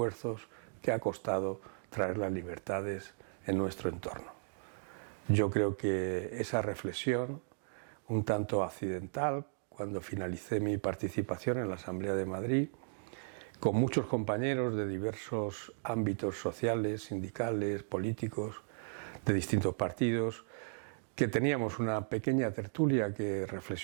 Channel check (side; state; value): left; silent; digital silence